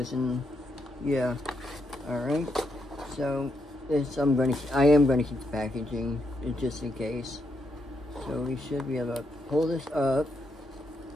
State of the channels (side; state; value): both; normal; correlation 0.80